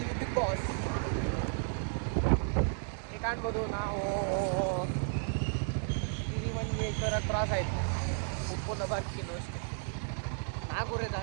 ಬಿಗ್ ಬಾಸ್ ಈಗ ಕಾಣ್ಬೋದು. ನಾವು ಹಿರಿಮಂಜೇಶ್ವರ ಕ್ರಾಸ್ ಆಯಿತು. ಉಪ್ಪುನ ಬರ್ಕಿನ್ನು ಅಷ್ಟೇ 4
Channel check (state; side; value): silent; left; 56 dB below the other